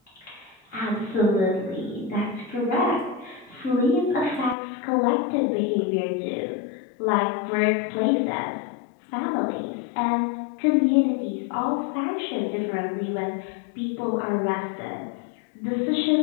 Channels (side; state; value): right; drops out; at 4.5 s